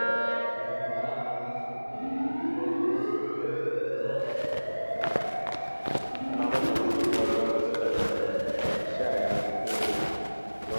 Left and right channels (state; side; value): inverted; both; correlation -1.00